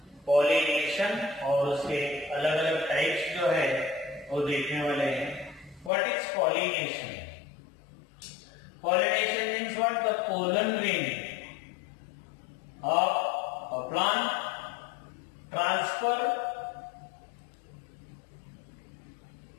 pollination और उसके अलग अलग types जो है वो देखने वाले हैं. What is pollination? Pollination means what? The pollen grain of a plant transfer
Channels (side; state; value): right; drops out; at 5.9 s